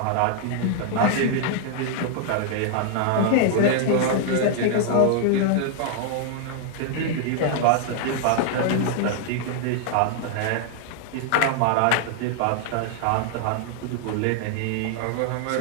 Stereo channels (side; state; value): both; different; correlation 0.00